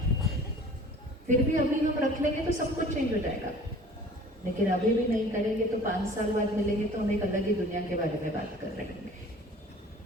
फिर भी अभी हम रख लेंगे तो सब कुछ चेंज हो जाएगा, लेकिन अभी भी नहीं करेंगे तो 5 साल बाद मिलेंगे तो हम एक अलग ही दुनिया के बारे में बात कर रहे होंगे।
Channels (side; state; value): both; normal; correlation 0.47